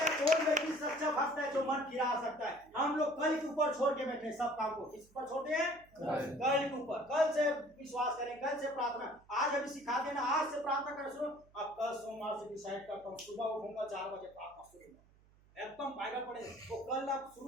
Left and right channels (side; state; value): right; noise; hum, 29 dB below the sound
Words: हैं कौन व्यक्ति सच्चा भक्त है जो मन फिरा सकता है। हम लोग कल के ऊपर छोड़ के बैठे सब काम को, किस पर छोड़ते हैं? कल के ऊपर। कल से विश्वास करें, कल से प्रार्थना। आज अभी सिखा देना, आज से प्रार्थना करना शुरू। अब कल सोमवार से डिसाइड करता हूँ, सुबह उठूंगा 4 बजे प्रार्थना शुरू, एकदम बाइबल पढ़े। तो कल आप